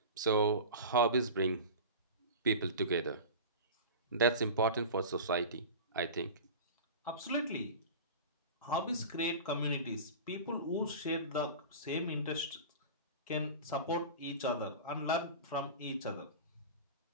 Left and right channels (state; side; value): inverted; both; correlation -0.31